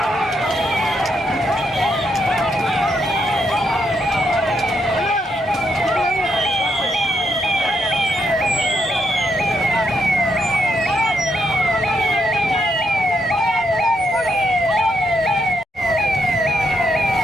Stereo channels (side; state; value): both; normal; correlation 0.78